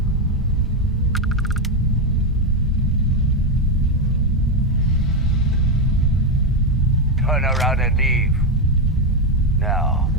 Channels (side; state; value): both; normal; correlation 0.07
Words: Turn around and leave. Now.